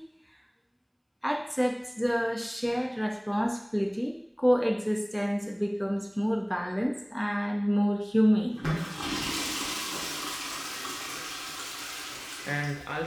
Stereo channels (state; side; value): identical; both; correlation 1.00